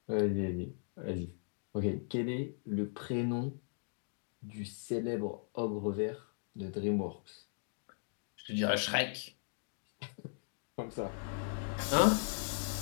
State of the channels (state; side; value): silent; right; digital silence